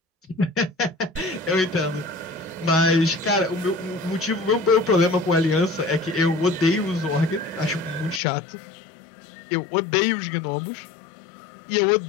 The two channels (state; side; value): drops out; right; at 8.2 s